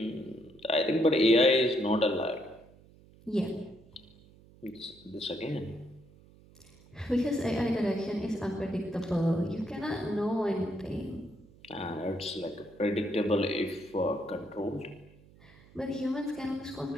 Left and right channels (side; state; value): right; noise; hum, 25 dB below the sound